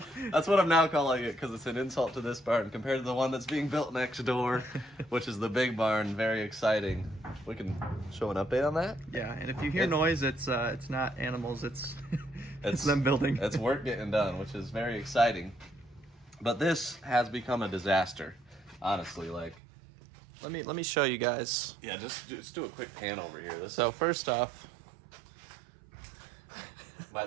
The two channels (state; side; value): drops out; left; at 19.6 s